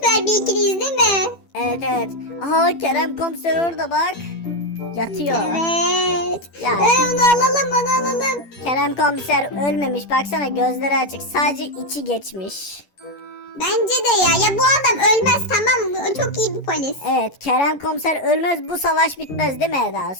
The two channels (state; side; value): late; right; 11 ms